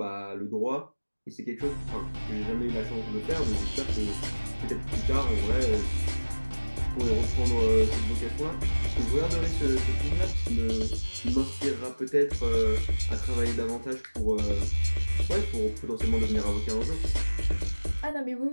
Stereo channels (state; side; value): inverted; both; correlation -1.00